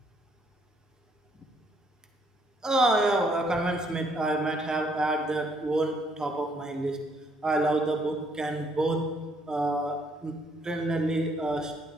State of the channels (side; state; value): both; normal; correlation 0.69